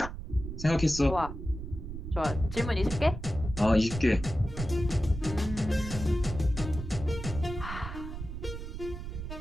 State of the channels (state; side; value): noise; right; rumble, 8 dB below the sound